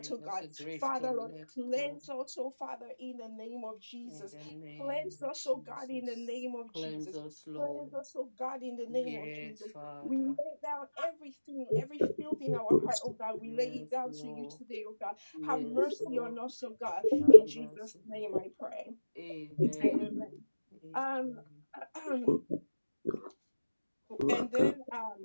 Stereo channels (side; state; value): both; inverted; correlation -1.00